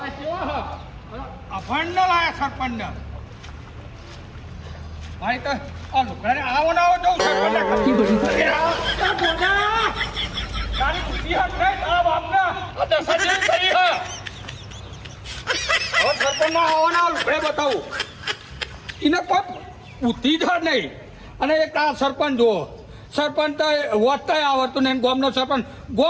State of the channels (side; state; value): both; identical; correlation 1.00